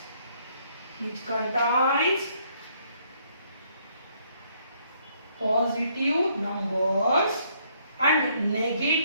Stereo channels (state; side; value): inverted; both; correlation -0.68